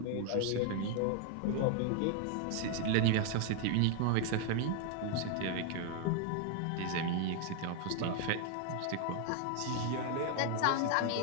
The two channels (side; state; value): both; different; correlation 0.01